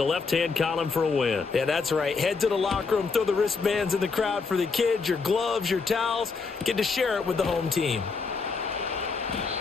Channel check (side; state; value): right; quieter; 4.7 dB